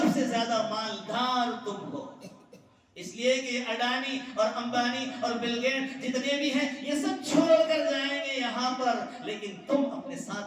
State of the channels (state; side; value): identical; both; correlation 1.00